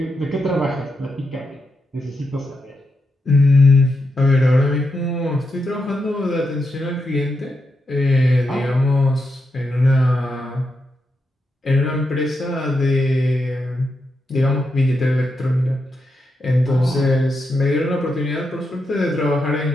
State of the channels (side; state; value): both; normal; correlation 0.85